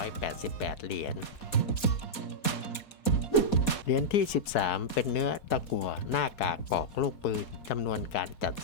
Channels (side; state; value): right; late; 4.2 ms